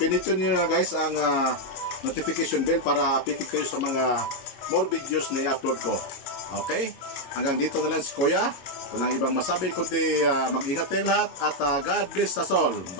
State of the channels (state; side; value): late; right; 22 ms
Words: niyo na guys ang notification bell para updated kayo sa mga more videos na i-upload ko. Okay? Hanggang dito na lang si Kuya. Walang ibang masabi kundi mag-ingat kayong lahat at God bless us all.